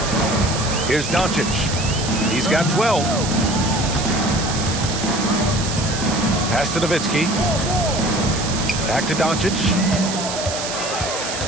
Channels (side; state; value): right; noise; hiss, 6 dB below the sound